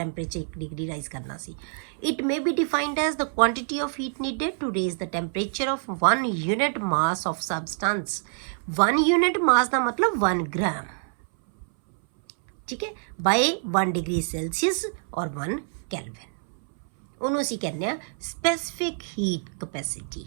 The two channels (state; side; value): silent; left; 61 dB below the other